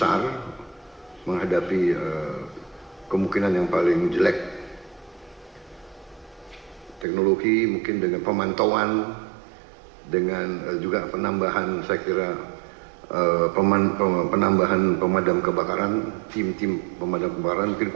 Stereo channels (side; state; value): left; drops out; at 7.1 s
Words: menghadapi kemungkinan yang paling jelek. Teknologi mungkin dengan pemantauan, dengan juga penambahan, saya kira penambahan pemadam kebakaran, tim-tim pemadam kebakaran, mungkin